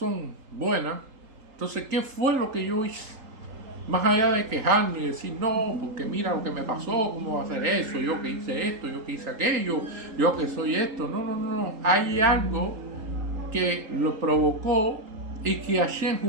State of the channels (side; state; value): left; late; 3.8 ms